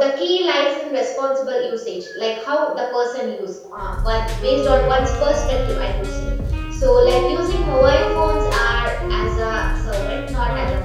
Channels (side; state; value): both; identical; correlation 1.00